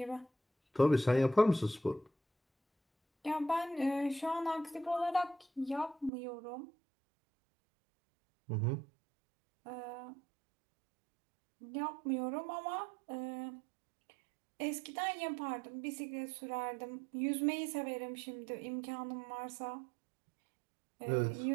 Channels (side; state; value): left; drops out; at 6.1 s